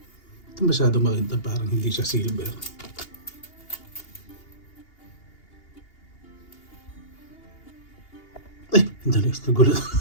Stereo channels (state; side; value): late; right; 2.8 ms